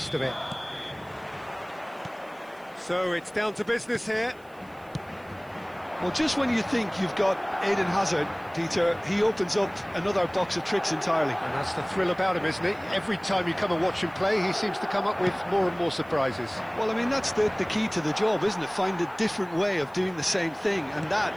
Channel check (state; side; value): noise; right; hiss, 30 dB below the sound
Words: of it. So it's down to business here. Well, just when you think you've got Eden Hazard, Peter, he opens up another box of tricks entirely. And that's the thrill about him, isn't it? Every time you come and watch him play, he seems to come up with more and more surprises. Well, I mean, that's the key to the job, isn't it? Find a different way of doing the same thing, and that